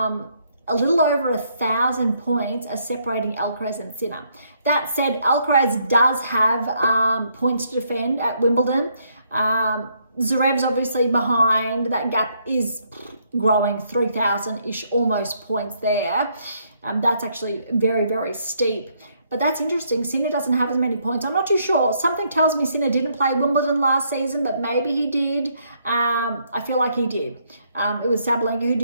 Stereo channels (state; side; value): inverted; both; correlation -0.72